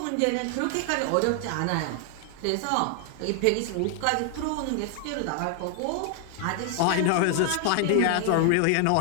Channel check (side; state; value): both; different; correlation 0.00